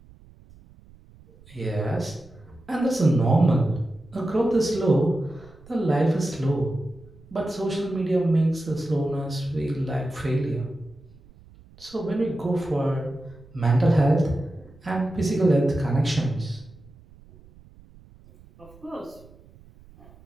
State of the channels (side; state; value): right; noise; rumble, 24 dB below the sound